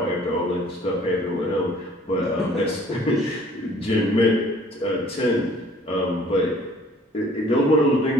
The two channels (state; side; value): normal; both; correlation 0.55